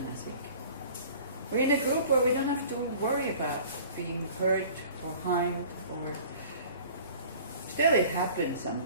think. We're in a group where we don't have to worry about being hurt or harmed, or still it happens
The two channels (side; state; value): both; inverted; correlation -0.47